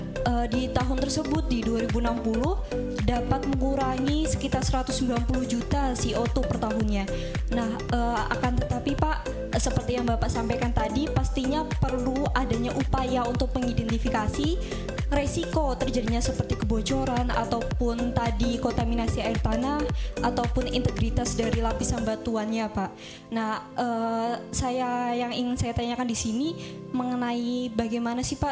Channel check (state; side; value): identical; both; correlation 1.00